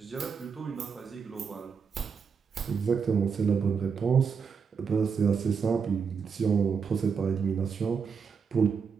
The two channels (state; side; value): quieter; left; 6.0 dB